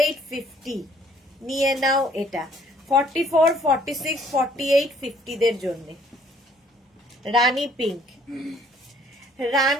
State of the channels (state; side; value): normal; both; correlation 0.61